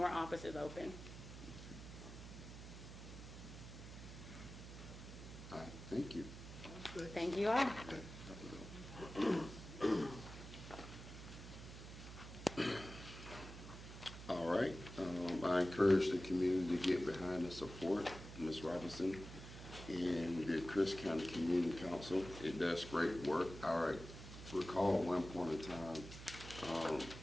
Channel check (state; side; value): noise; right; hum, 12 dB below the sound